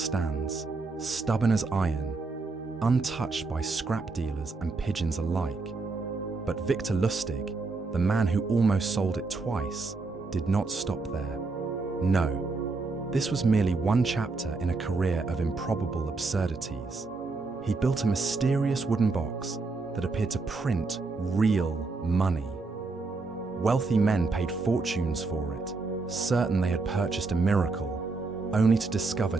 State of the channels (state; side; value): quieter; left; 3.9 dB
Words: stubborn as iron, untouched by scrap dealers and pigeons alike. But Victor Lustig, the man who almost sold it twice, did not stop there. No, this was merely one chapter in a career of improbable absurdities. He built a mysterious wooden box that appeared to print real money. Wealthy men paid fortunes for it, certain they had purchased a miracle, only to discover